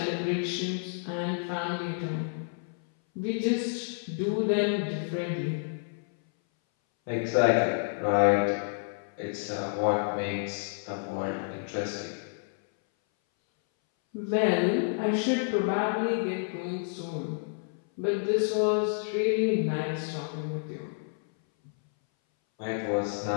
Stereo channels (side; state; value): right; silent; 58 dB below the other